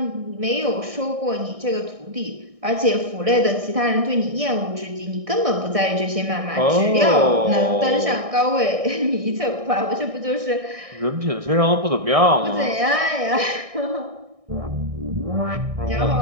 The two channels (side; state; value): left; late; 1.6 ms